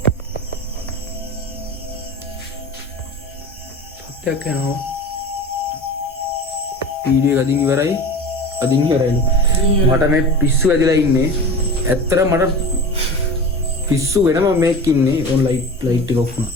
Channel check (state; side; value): normal; both; correlation 0.34